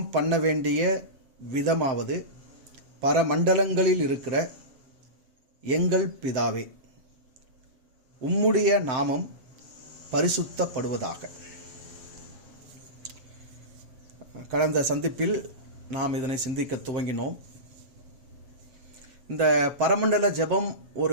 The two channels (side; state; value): left; late; 7.4 ms